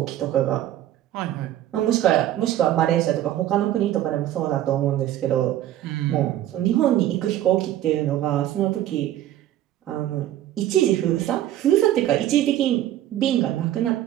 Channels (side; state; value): left; quieter; 12.9 dB